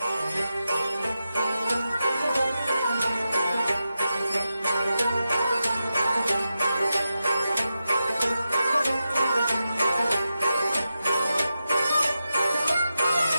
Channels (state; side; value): inverted; both; correlation -0.90